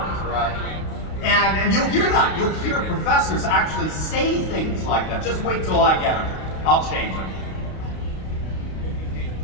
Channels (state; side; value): late; right; 32 ms